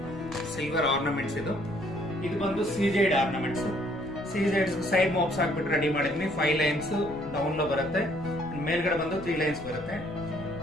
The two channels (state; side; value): noise; left; rumble, 17 dB below the sound